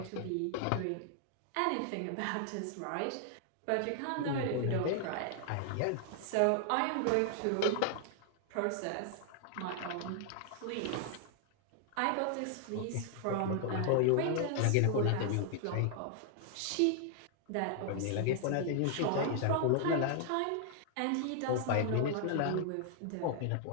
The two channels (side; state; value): both; different; correlation 0.00